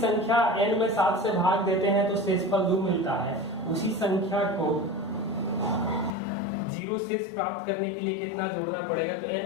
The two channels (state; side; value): drops out; right; at 6.2 s